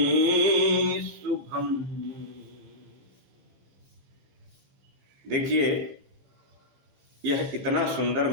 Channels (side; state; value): left; late; 15 ms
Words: शुभम। देखिए, यह इतना सुंदर